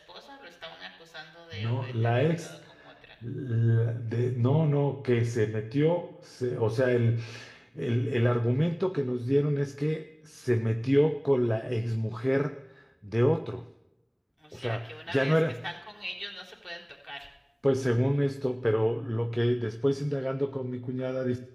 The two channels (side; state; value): both; identical; correlation 1.00